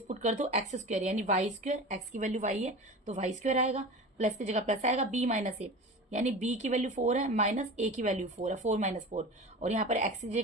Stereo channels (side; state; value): both; normal; correlation 0.32